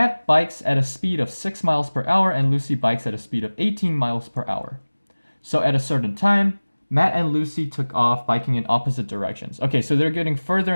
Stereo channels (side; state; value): both; inverted; correlation -1.00